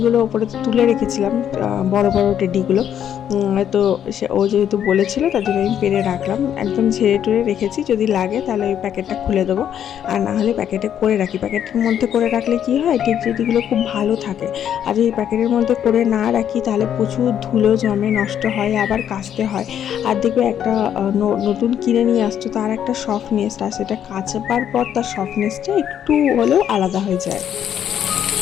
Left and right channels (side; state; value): right; quieter; 9.6 dB